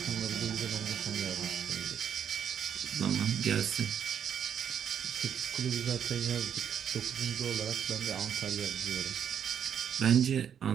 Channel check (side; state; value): left; quieter; 8.5 dB